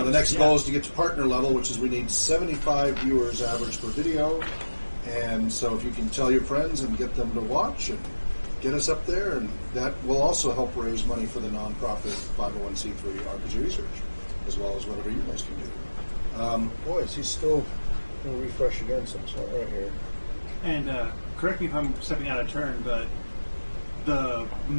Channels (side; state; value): both; inverted; correlation -1.00